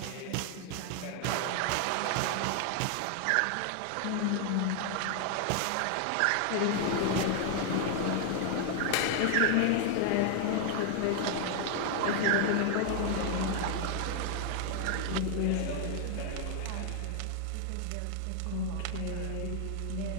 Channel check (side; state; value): both; different; correlation 0.00